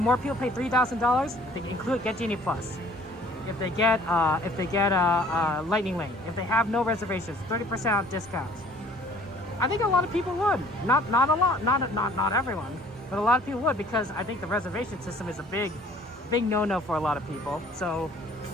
people pay $3,000? They get Genie Plus. If they get Lightning Lane, if they have no reservations, 30% discounts. I think a lot of people would. Not a lot, not everyone, but a lot of people would, because I think the reservation system is a big no-no for a lot of people. So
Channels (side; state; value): both; normal; correlation 0.54